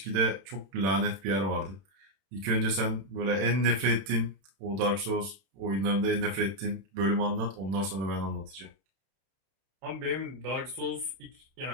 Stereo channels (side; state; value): left; late; 31 ms